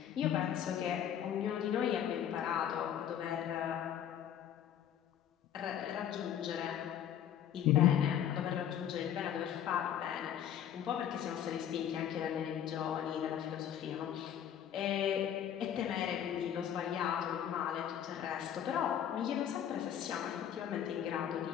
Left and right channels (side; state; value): right; quieter; 9.8 dB